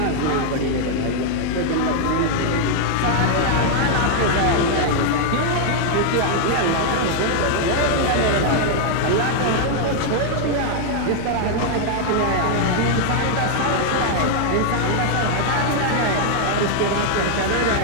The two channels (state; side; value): different; both; correlation 0.00